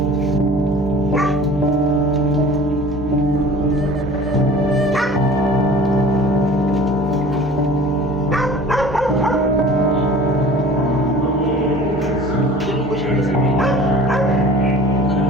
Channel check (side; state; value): both; normal; correlation 0.44